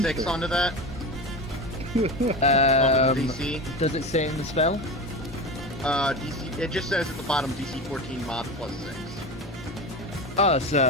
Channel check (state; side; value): normal; both; correlation 0.25